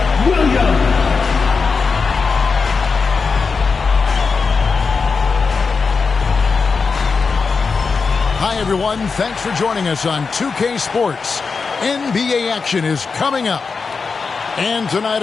Williams. Hi, everyone. Thanks for joining us on 2K Sports. NBA action is coming up. And tonight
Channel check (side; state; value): right; quieter; 4.9 dB